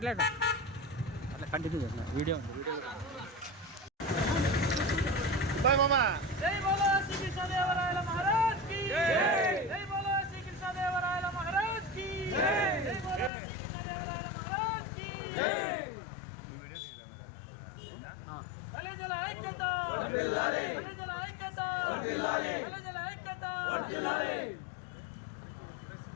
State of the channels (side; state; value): right; drops out; at 13.3 s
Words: కంటిన్యూ చేస్తున్నా వీడియో ఉంది బాయ్ మామా జై బోలో శ్రీ కృష్ణదేవరాయల మహారాజ్ కి జై బోలో శ్రీ కృష్ణదేవరాయల మహారాజ్ కి జై బోలో శ్రీ కృష్ణదేవరాయల మహారాజ్ కి నువ్వు వీడియో తీయరా బలిజల ఐక్యత వర్ధిల్లాలి బలిజల ఐక్యత వర్ధిల్లాలి బలిజల ఐక్యత వర్ధిల్లాలి